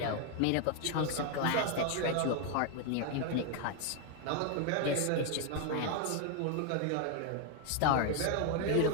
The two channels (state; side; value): different; both; correlation 0.01